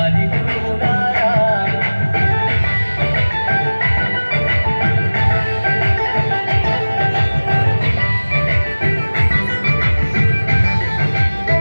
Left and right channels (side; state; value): both; inverted; correlation -1.00